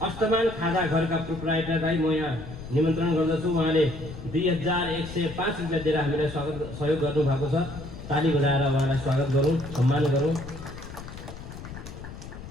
अष्टमान खाजा घरका प्रोप्राइटरलाई म यहाँ निमन्त्रण गर्दछु। उहाँले 2105 रुपियाँ दिएर हामीलाई सहयोग गर्नुभएको छ। ताली बजाएर उहाँलाई स्वागत गरौँ, सम्मान गरौँ।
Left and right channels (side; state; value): left; noise; rumble, 12 dB below the sound